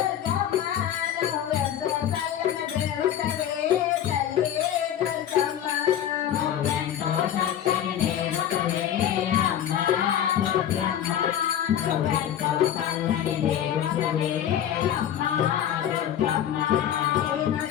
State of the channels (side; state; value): right; quieter; 10.3 dB